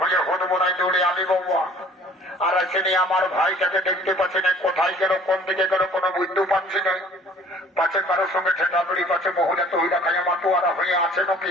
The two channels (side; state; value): both; normal; correlation 0.53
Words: হয়ে হদবরায় দৌড়ে আলি বাবা। আর আসেনি আমার ভাইটাকে দেখতে পাচ্ছি না, কোথায় গেল কোন দিকে গেল কোনো বুঝতে পারছি না। পাশে কারোর সঙ্গে ঠেকাবড়ি পাশে মহিলা তো হইলা খাইয়া মাতুয়ারা হয়ে আছে